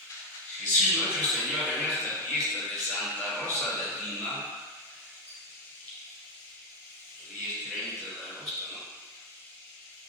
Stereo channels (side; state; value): both; normal; correlation 0.06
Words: Jesús nuestro Señor en esta fiesta de Santa Rosa de Lima, el día 30 de agosto, ¿no?